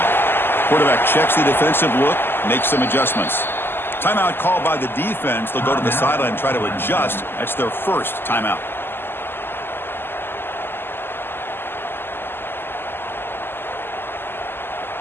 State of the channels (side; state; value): right; late; 0.10 ms